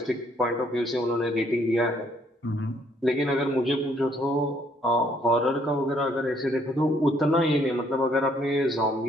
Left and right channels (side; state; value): both; normal; correlation 0.67